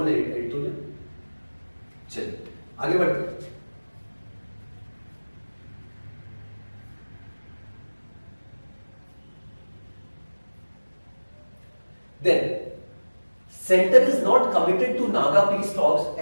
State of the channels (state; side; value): inverted; both; correlation -1.00